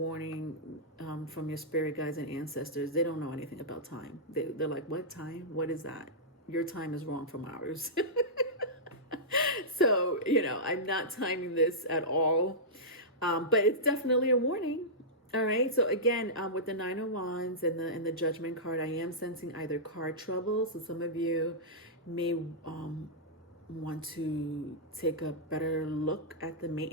from your spirit guides and ancestors, they don't know anything about time. They're like, what time? What is that? Your time is wrong from ours. So, I'm not timing this at all. But it's definitely a warning. All right. So again, with the 9 of Wands and the Judgment card, I am sensing either car trouble. So some of you may want to take a better look at the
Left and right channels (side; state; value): both; normal; correlation -0.13